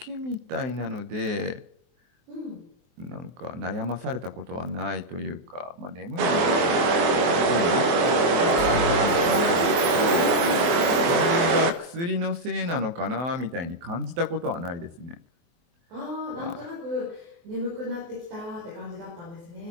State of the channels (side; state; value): left; late; 23 ms